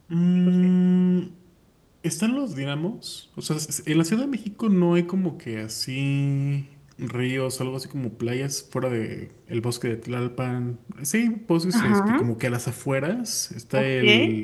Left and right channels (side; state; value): both; identical; correlation 1.00